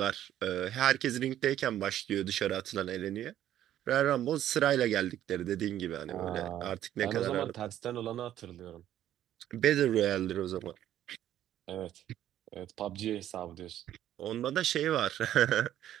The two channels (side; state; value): left; quieter; 11.9 dB